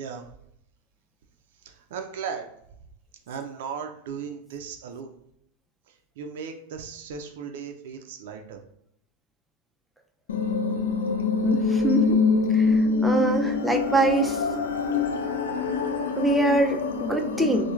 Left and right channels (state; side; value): normal; both; correlation 0.40